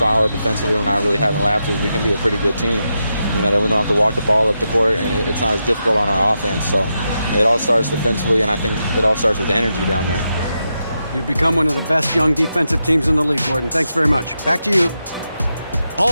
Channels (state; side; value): inverted; both; correlation -0.86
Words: defensively, we're not really having lapses, we can be a pretty good team. You know, that we don't have to walk the ball up the court, and it's not as difficult on our offense. So it all starts defensively, and I think it all starts with energy down there. You've become one of the best young defensive teams in the league, Gordon. Thanks very much. Back to you.